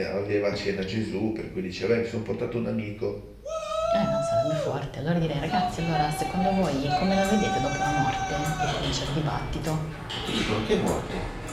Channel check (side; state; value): both; identical; correlation 1.00